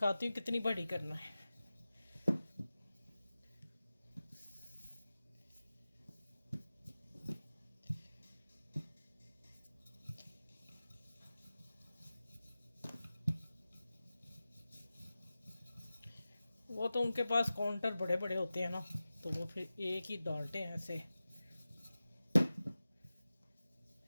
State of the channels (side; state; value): both; inverted; correlation -0.95